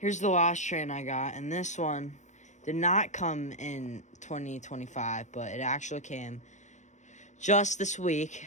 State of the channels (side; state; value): right; late; 0.35 ms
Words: the last train I got, and this one did not come in 2025, but it actually came just this week.